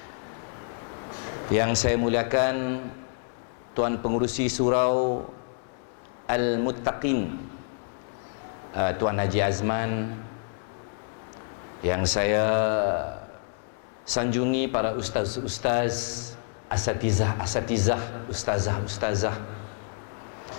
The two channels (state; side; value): silent; right; 59 dB below the other